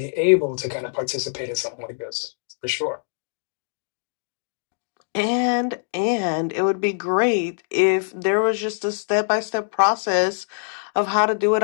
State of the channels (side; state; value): right; silent; digital silence